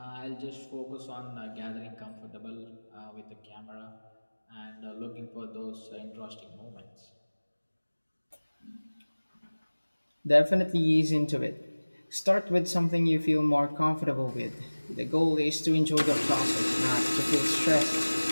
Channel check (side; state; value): both; inverted; correlation -1.00